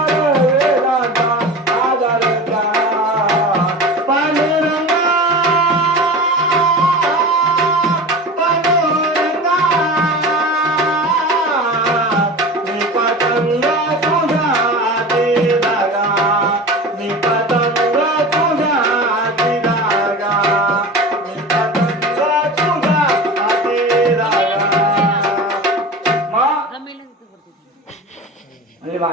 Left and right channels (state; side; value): normal; both; correlation 0.32